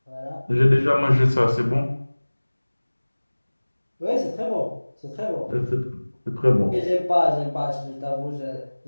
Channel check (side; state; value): both; inverted; correlation -1.00